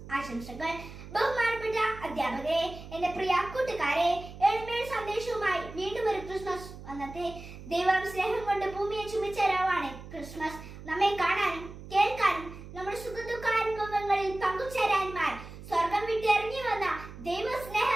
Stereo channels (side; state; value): right; noise; hum, 14 dB below the sound